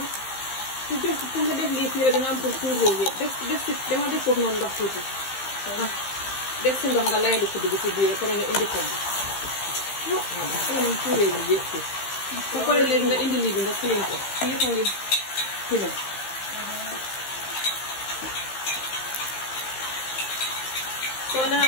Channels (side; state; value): right; late; 15 ms